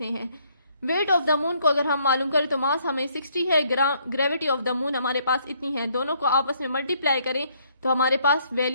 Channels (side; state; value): both; inverted; correlation -0.68